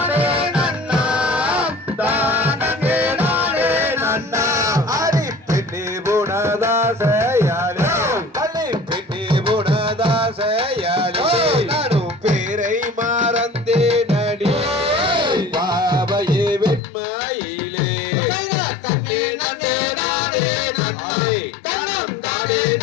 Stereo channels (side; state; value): right; drops out; at 16.8 s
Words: நன்னா தானே நானே நன்னா அரி பெண்ணே புனதாசையாலே அலி பெண்ணே புனதாசையாலே நானும் பேரை மறந்தே நடி பாவையே வெண்மையிலே தன்னே நன்னே நானே நன்னே தனம் தானே